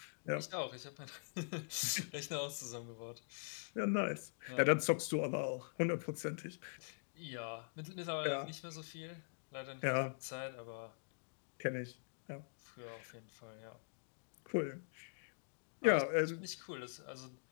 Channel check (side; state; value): right; silent; digital silence